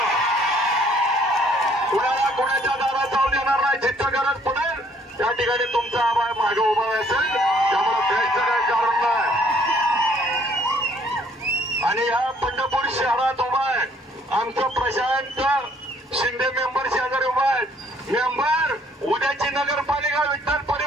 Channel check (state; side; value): normal; both; correlation 0.63